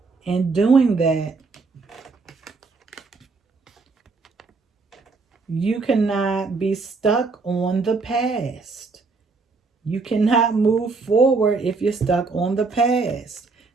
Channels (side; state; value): left; quieter; 4.1 dB